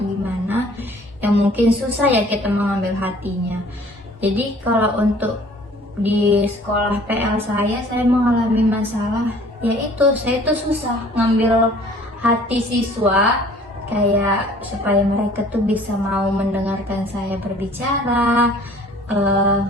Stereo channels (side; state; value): both; normal; correlation 0.53